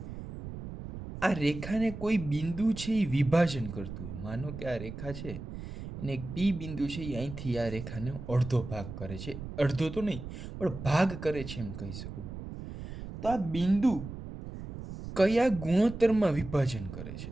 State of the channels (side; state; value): right; noise; rumble, 10 dB below the sound